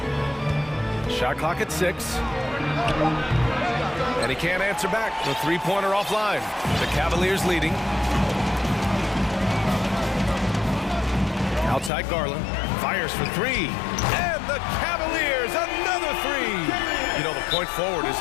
Shot clock at 6. And he can't answer back. The three-pointer offline. The Cavaliers leading. Outside Garland. Fires for three. And the Cavaliers, another three. You know, the point forward is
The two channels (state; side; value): drops out; right; at 11.9 s